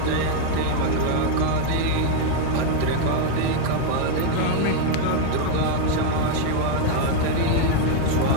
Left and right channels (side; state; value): both; different; correlation 0.00